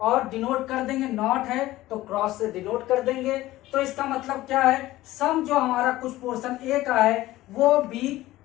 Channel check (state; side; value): quieter; right; 16.5 dB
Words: और डिनोट कर देंगे, नॉट है तो क्रॉस से डिनोट कर देंगे। तो इसका मतलब क्या है, सम जो हमारा कुछ पोर्शन ए का है वो बी